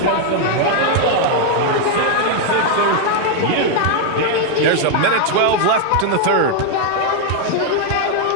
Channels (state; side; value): different; both; correlation 0.00